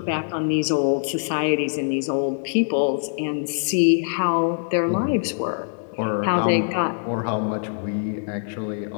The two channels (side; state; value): right; silent; digital silence